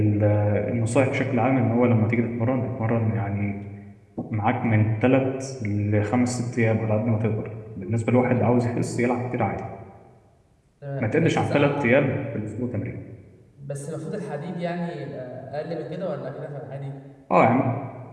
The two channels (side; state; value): both; identical; correlation 1.00